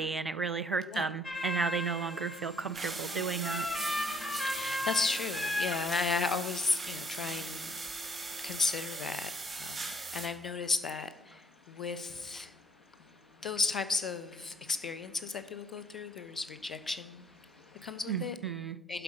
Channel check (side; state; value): both; normal; correlation 0.64